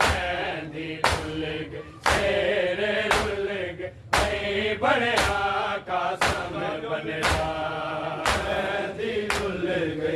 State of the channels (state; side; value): identical; both; correlation 1.00